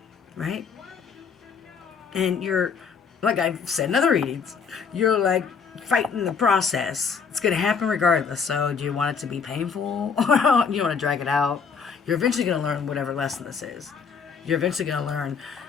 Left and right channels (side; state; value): right; quieter; 6.0 dB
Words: Right? And you're, like I've said in other readings, you're like fighting the process. It's going to happen regardless. So do you want it to be painful? Or you want to drag it out? You're eventually going to learn whatever lesson this is. You're eventually going to learn